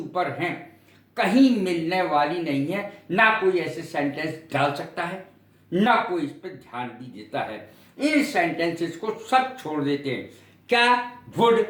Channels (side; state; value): both; identical; correlation 1.00